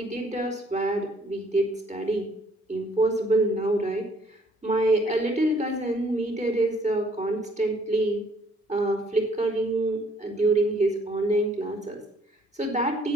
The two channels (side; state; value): both; normal; correlation 0.63